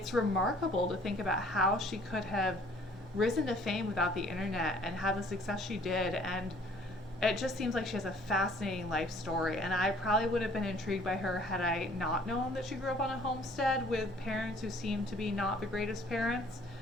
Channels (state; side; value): normal; both; correlation 0.56